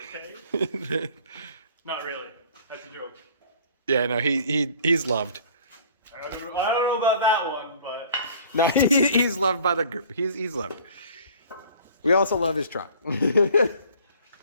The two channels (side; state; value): both; inverted; correlation -0.51